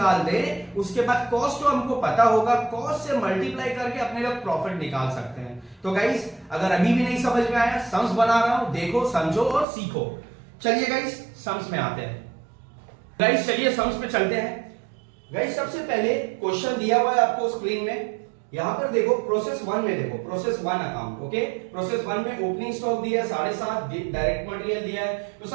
दे, उसके बाद कॉस्ट तो हमको पता होगा, कॉस्ट से मल्टीप्लाई करके अपने लोग प्रॉफिट निकाल सकते हैं। तो गाइस अगर अभी भी नहीं समझ में आया, सम्स बना रहा हूं, देखो, समझो और सीखो। चलिए गाइस सम्स में आते हैं। गाइस चलिए सम्स पे चलते हैं। गाइस सबसे पहले क्वेश्चन दिया हुआ है आपको स्क्रीन में, यहां पर देखो प्रोसेस 1 में, देखो प्रोसेस 1 अकाउंट। ओके, प्रोसेस 1 में ओपनिंग स्टॉक दिया है 7.5, डायरेक्ट मटेरियल दिया है। तो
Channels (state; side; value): drops out; left; at 9.7 s